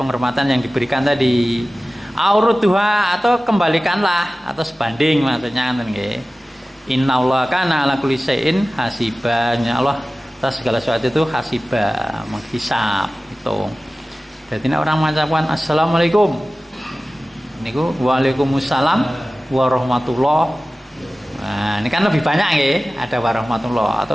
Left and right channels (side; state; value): both; normal; correlation 0.96